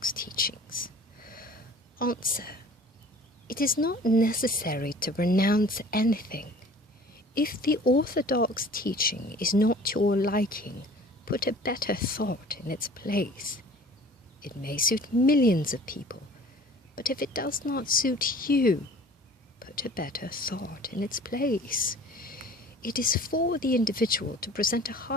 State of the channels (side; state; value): both; normal; correlation 0.47